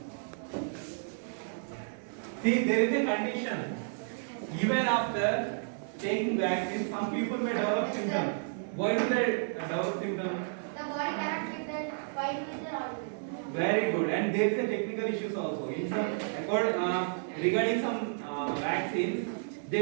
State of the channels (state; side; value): silent; left; digital silence